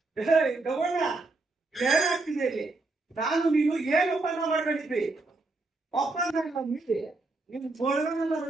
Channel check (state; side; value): quieter; left; 3.3 dB